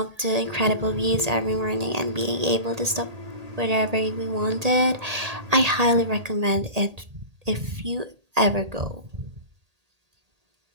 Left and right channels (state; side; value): late; left; 1.8 ms